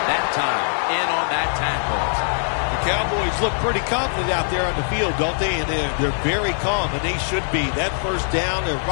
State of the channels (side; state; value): right; silent; 61 dB below the other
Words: that time, in on that tackle. The Cowboys look pretty confident out there on the field, don't they? And they're very calm, and they should be. That first down, they're